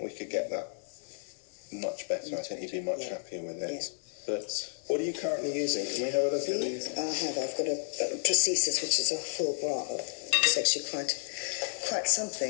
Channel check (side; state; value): right; silent; 57 dB below the other